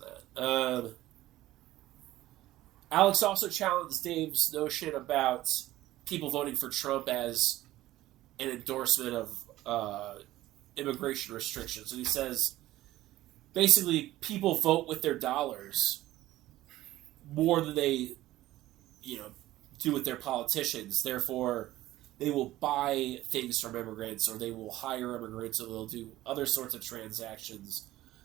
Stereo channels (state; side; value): quieter; left; 15.6 dB